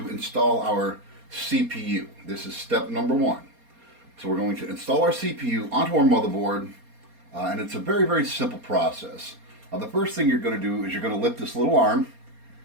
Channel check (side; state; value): left; late; 4.3 ms